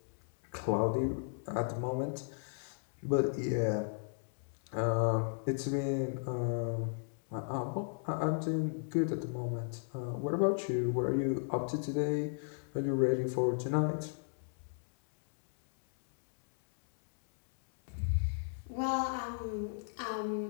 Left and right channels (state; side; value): silent; right; 54 dB below the other